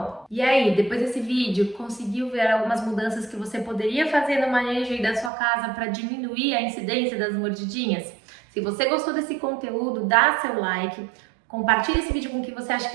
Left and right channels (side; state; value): left; drops out; at 5.3 s